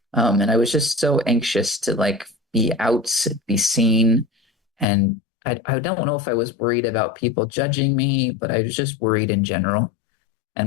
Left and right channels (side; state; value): right; drops out; at 4.9 s